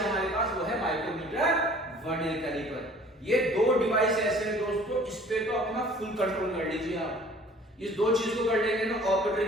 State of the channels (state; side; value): normal; both; correlation 0.51